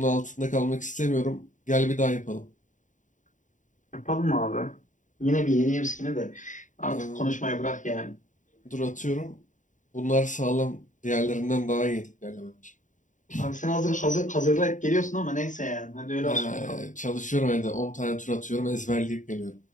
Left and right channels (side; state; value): right; late; 0.37 ms